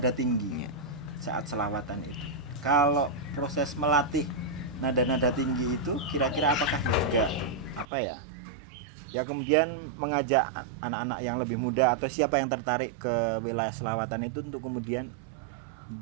tinggi saat selawatan itu. Kalau proses melatih nada-nada tinggi itu kira-kira apakah juga apa ya? Ya kemudian mengajak anak-anak yang lebih muda atau siapa yang tertarik ke wilayah selawatan itu untuk kemudian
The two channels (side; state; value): left; drops out; at 7.9 s